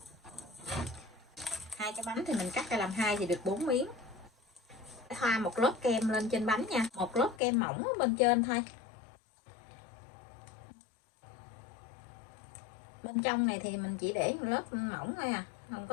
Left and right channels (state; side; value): drops out; right; at 7.4 s